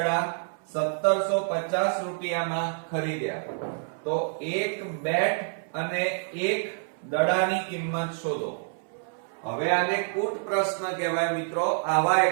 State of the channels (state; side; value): silent; left; 60 dB below the other